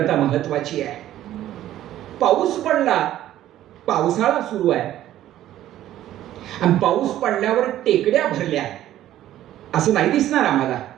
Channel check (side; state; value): left; quieter; 13.0 dB